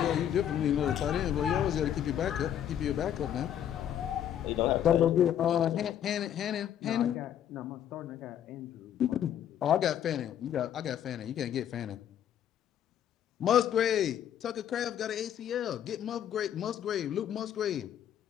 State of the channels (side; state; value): right; quieter; 10.1 dB